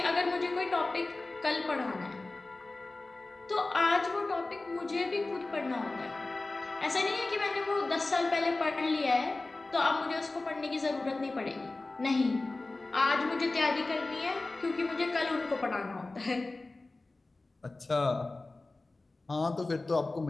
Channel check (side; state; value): right; quieter; 3.2 dB